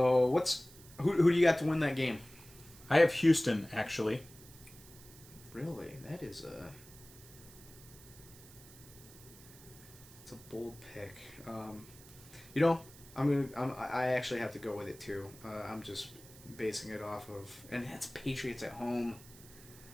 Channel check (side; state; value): right; noise; hiss, 20 dB below the sound